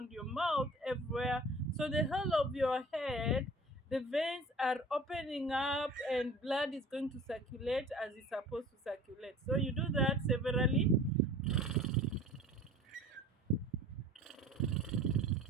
your mouth, everywhere. So, the whole of your head, the veins are opening up and blood is going to circulate as it's supposed to circulate. So, you do that severally.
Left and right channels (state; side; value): normal; both; correlation 0.44